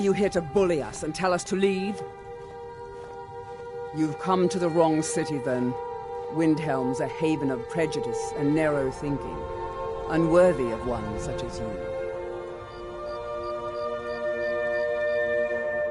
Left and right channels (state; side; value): identical; both; correlation 1.00